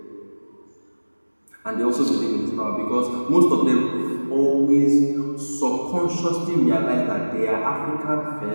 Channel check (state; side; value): inverted; both; correlation -1.00